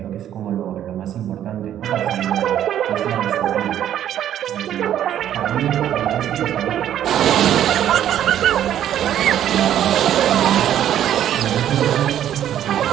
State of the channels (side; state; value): left; quieter; 10.9 dB